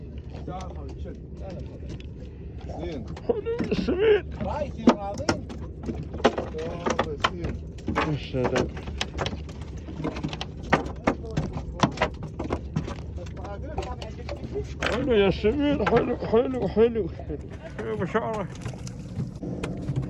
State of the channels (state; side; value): identical; both; correlation 1.00